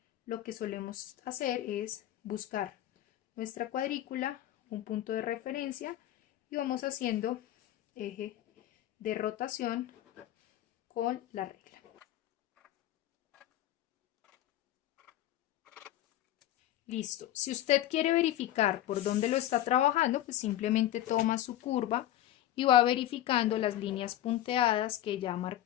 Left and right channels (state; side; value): quieter; right; 13.1 dB